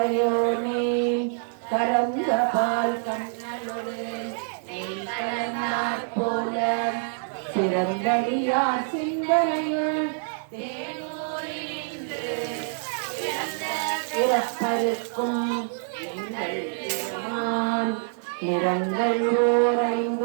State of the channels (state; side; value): silent; left; 61 dB below the other